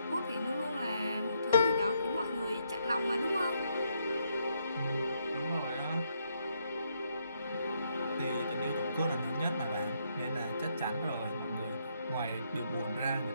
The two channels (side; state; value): both; inverted; correlation -0.76